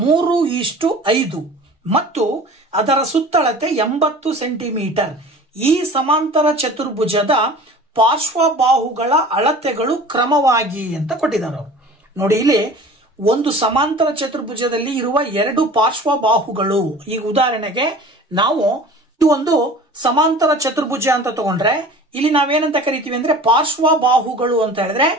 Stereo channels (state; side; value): normal; both; correlation 0.42